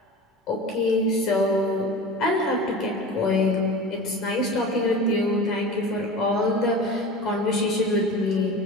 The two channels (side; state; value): both; normal; correlation 0.34